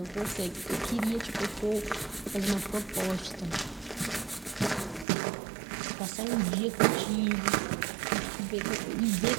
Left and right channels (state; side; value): drops out; left; at 5.1 s